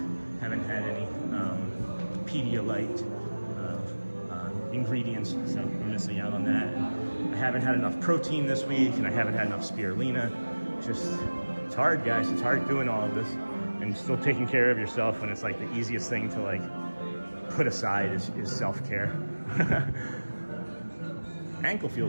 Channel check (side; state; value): both; inverted; correlation -1.00